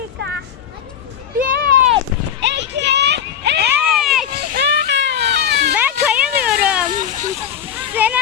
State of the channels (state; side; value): quieter; right; 8.8 dB